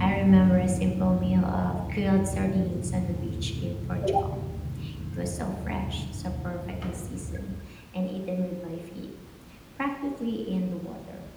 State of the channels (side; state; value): both; identical; correlation 1.00